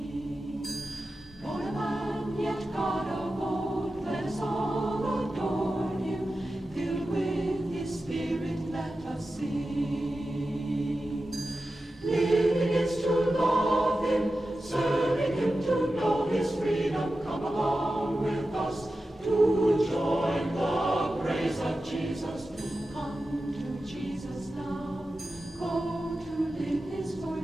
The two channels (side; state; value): both; normal; correlation 0.93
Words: Born a man, yet God of old, let us all adore him. Filled with his Spirit, let us sing. Living is to love him, serving him to know his freedom. Come along with us to join the praise of Jesus. Come to Jesus now, go to live his